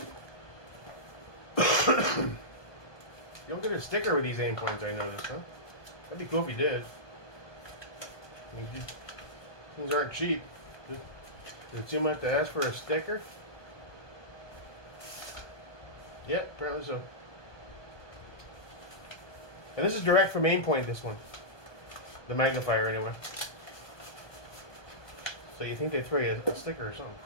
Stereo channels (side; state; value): right; late; 1.2 ms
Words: You don't get a sticker with these Aimpoints, I noticed, huh? That'd be cool if you did. I mean, things aren't cheap. Is it too much to ask for a sticker? Yep, apparently so. And this is direct from Aimpoint, this one. The magnifier, anyway. So you think they throw you a sticker or something.